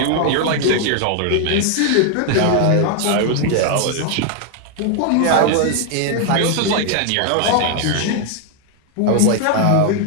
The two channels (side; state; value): both; different; correlation 0.00